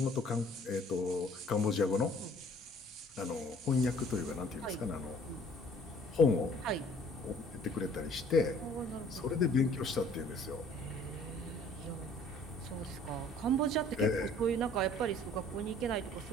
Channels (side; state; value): both; normal; correlation 0.55